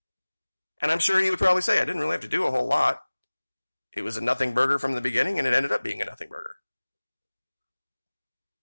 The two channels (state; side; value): inverted; both; correlation -1.00